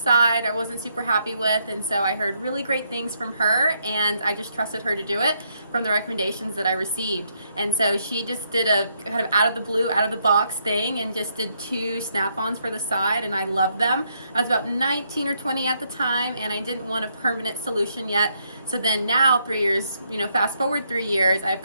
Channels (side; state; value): both; inverted; correlation -0.75